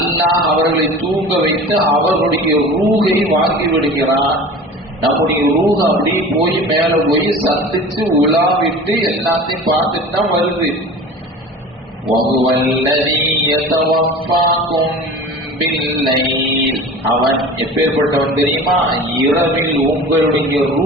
அவர்களை தூங்க வைத்து அவர்களுடைய ரூஹை வாங்கி விடுகிறான். நம்முடைய ரூஹ் அப்படி போய் மேல போய் சந்திச்சு உலாவிட்டு எல்லாத்தையும் பார்த்துட்டு தான் வருது. அவன் எப்பேற்பட்டவன் தெரியுமா? இரவில் உங்களுடைய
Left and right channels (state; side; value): normal; both; correlation 0.37